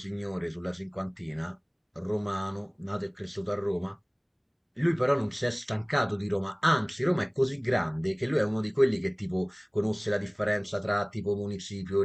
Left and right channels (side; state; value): both; identical; correlation 1.00